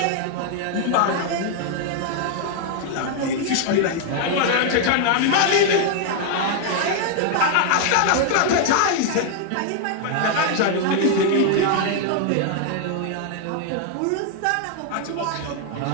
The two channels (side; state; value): both; different; correlation 0.00